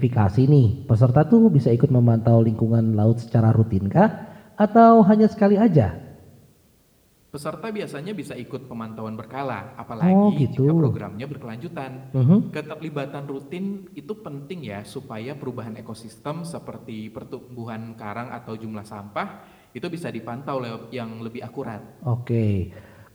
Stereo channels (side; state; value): both; identical; correlation 1.00